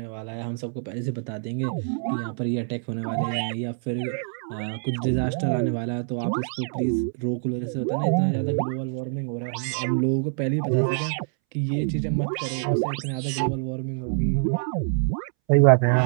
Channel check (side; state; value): left; silent; 61 dB below the other